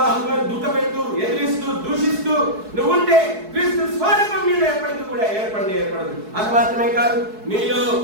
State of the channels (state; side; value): late; left; 4.7 ms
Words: దుఃఖపెడుతూ, ఎదిరిస్తూ, దూషిస్తూ నువ్వు ఉంటే క్రీస్తు స్వరూపం నీలో ఎప్పటికీ కూడా ఏర్పడదు. అది మాత్రమే కాదు, నీలో